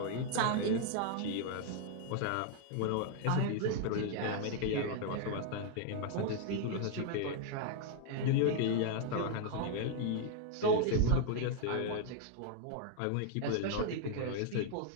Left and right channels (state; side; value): different; both; correlation 0.00